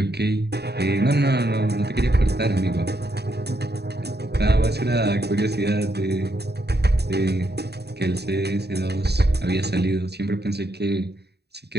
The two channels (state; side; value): late; left; 0.48 ms